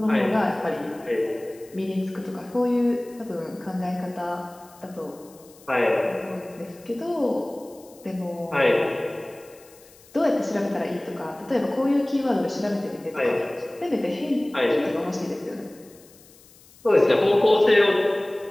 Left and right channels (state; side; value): noise; left; hiss, 25 dB below the sound